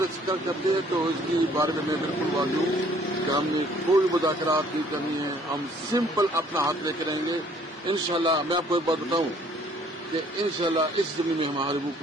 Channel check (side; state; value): both; normal; correlation 0.59